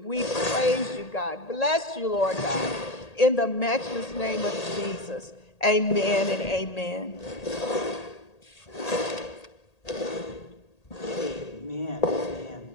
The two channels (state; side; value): late; right; 1.8 ms